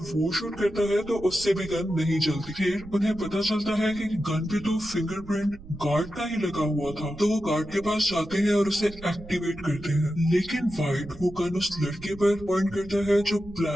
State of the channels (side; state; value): right; noise; rumble, 17 dB below the sound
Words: वो शूट करता है तो उससे भी गन नहीं चलती। फिर उन्हें पता चलता है कि गन पे तो फिंगरप्रिंट गार्ड का ही लगा हुआ था। तो वो गार्ड के पास जाते हैं और उसे एक्टिवेट करते हैं, लेकिन वाइट वो गन उस लड़के पर पॉइंट करता है जो